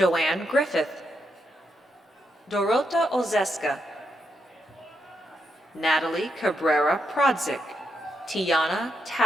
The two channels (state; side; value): normal; both; correlation 0.82